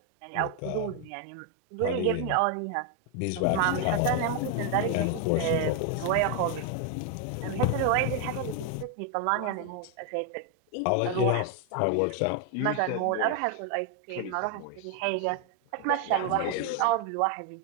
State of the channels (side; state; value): both; different; correlation 0.01